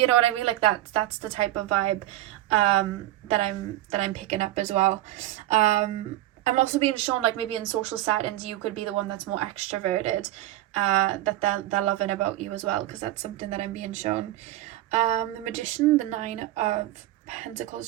know what I mean? Like, that's the type of vibe that I'm picking up as well. I'm also being shown like maybe in social settings you could be the one that's more extroverted, that they're loving about you as well, because that's something that I'm being shown. The Magician, the 9 of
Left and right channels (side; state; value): left; quieter; 15.2 dB